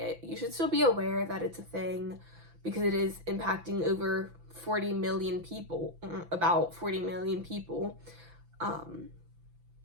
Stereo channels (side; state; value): left; late; 6.0 ms